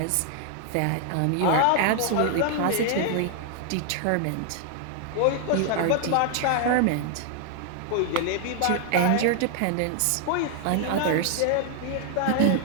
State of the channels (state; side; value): different; both; correlation 0.00